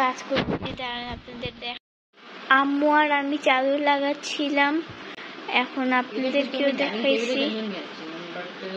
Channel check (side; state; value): both; identical; correlation 1.00